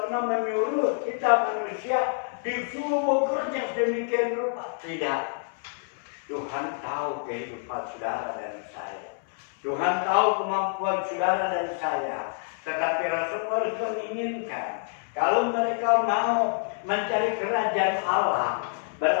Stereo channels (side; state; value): right; silent; 60 dB below the other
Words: menyuruh kita manusia disuruh bekerja sedemikian rupa. Tidak. Tuhan tahu kehidupan saudara dan saya. Tuhan tahu kemampuan saudara dan saya. Tetapi Rasul harus menginginkan kalau mereka mau mencari kerajaan Allah,